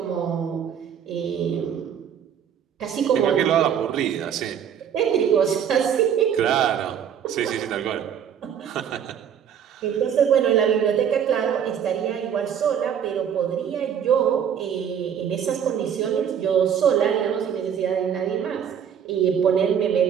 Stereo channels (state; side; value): quieter; left; 8.5 dB